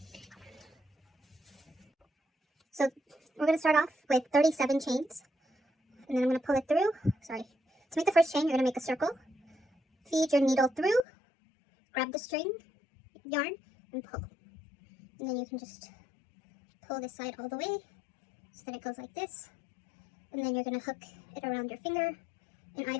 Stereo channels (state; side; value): drops out; right; at 11.1 s